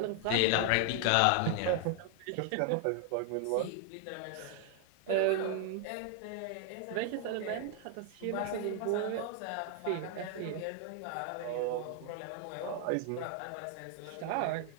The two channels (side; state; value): both; different; correlation 0.00